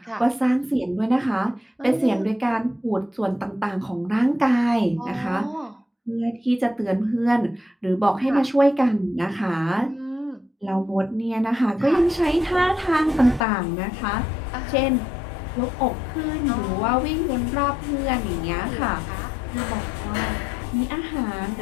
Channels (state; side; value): drops out; right; at 13.5 s